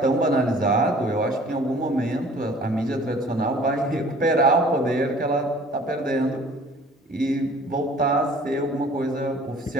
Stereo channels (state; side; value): normal; both; correlation 0.51